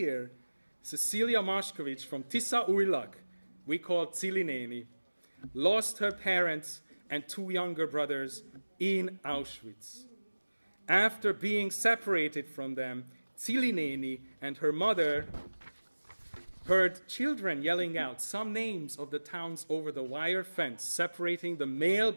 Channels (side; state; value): both; inverted; correlation -1.00